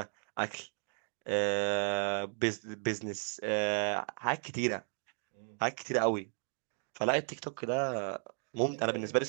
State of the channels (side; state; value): left; silent; 55 dB below the other